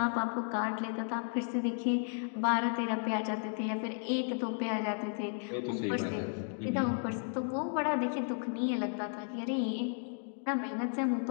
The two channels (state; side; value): silent; right; 55 dB below the other